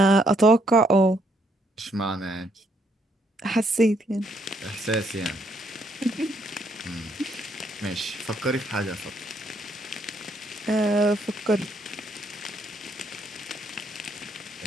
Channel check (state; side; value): normal; both; correlation 0.71